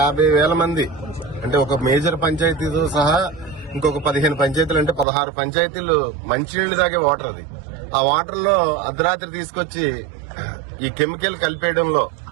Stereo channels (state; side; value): drops out; left; at 5.1 s